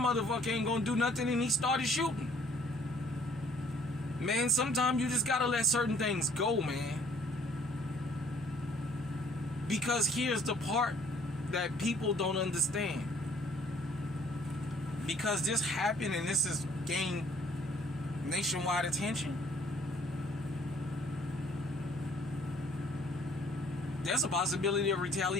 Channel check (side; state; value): both; normal; correlation 0.59